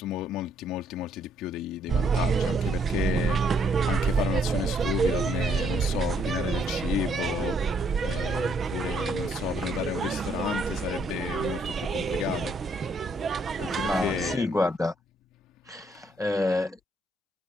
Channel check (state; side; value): normal; both; correlation 0.70